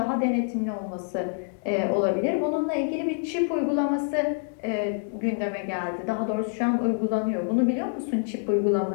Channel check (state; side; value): silent; right; digital silence